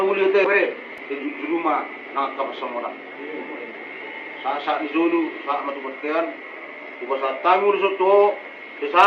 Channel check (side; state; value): both; identical; correlation 1.00